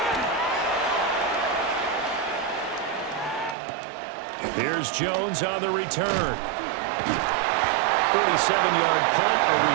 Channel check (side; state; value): left; drops out; at 3.6 s